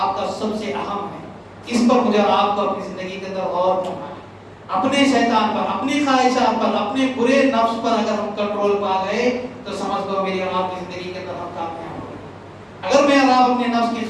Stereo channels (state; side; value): identical; both; correlation 1.00